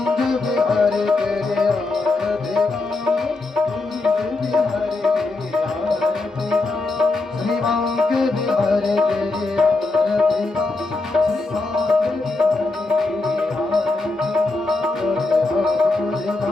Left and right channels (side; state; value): right; quieter; 3.4 dB